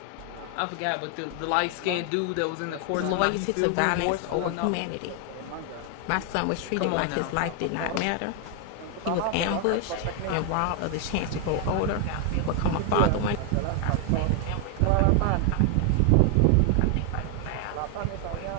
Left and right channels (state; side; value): different; both; correlation 0.00